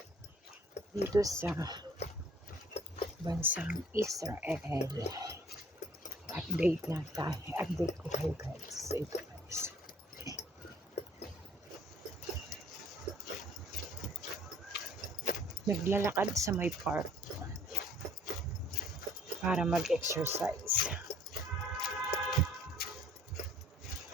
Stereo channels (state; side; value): normal; both; correlation 0.56